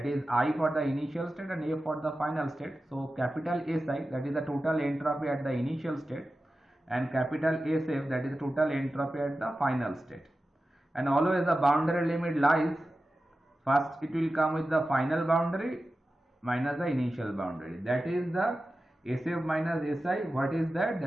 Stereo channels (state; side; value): normal; both; correlation 0.93